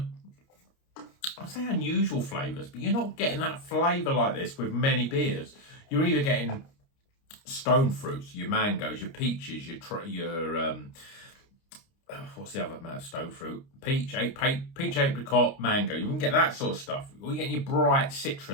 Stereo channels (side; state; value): right; late; 29 ms